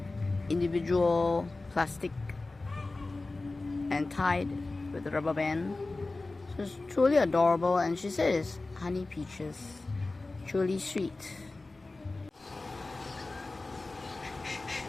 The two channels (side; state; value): right; quieter; 3.3 dB